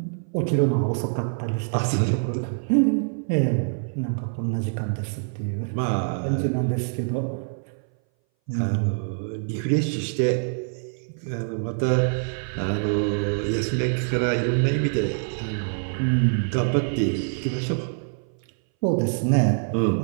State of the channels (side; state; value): left; silent; 59 dB below the other